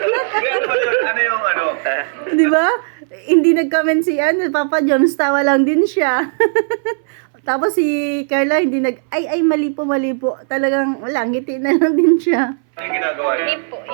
Kaya ano ba yun? Ano yung Diba? Hindi nag-comment si Papa Joms, tawa lang din siya. Tapos si Carla hindi ay mali po. Talagang wala, ngiti na lang din siya. Ano yung ginagawa niya? Hindi po.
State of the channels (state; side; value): silent; left; 64 dB below the other